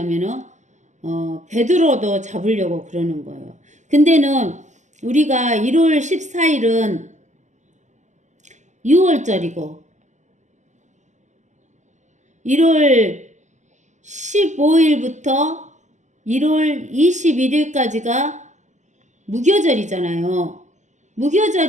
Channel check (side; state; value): left; late; 0.34 ms